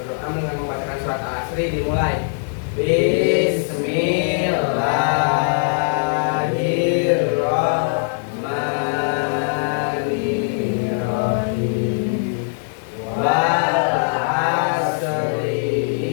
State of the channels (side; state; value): right; silent; digital silence